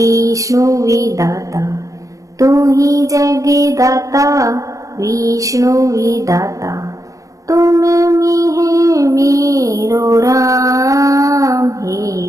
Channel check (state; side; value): late; left; 0.16 ms